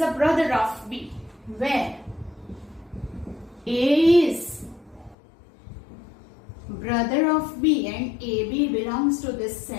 brother of B, where A is brother of B and AB belongs to this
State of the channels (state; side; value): drops out; right; at 5.2 s